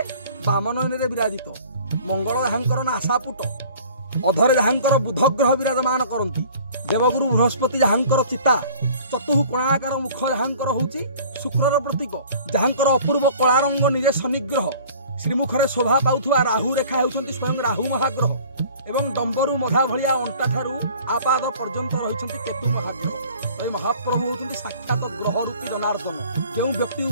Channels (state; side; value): inverted; both; correlation -0.48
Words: बाम नयन विराजित मंगल जहाँकर नासापुट अधरे जहाँकर बुध ग्रह विराजमान करती देवगुरु बृहस्पति जहाँकर चिता चतुः कोणाकार मुख जहाँकर होची शुक्रर प्रतीक जहाँकर अपूर्व कला रंग निजे शनिग्रह श्रीमुखरे शोभा पाउथुवा राहु रेखा होउछंती स्वयं राहु महाग्रह एवं डंबरू मधा भलिया अंटा ठारू आपाद पर्यंत रही केतु महाग्रह महाप्रभु होती साक्षात ग्रह रूपी जनार्दन जो व्यक्ति